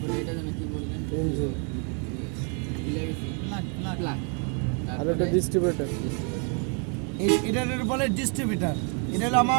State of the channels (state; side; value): quieter; left; 39.3 dB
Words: এটা জানো কি বললেন? ইঞ্জিল, প্লাগ, আর এটা ডিস্ট্রিবিউটার। এটার বলে ডিস্ট্রিবিউটার। এটা হলো